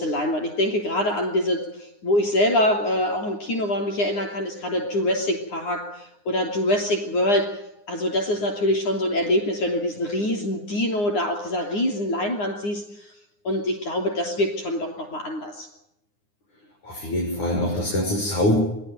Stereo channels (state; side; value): late; right; 9.7 ms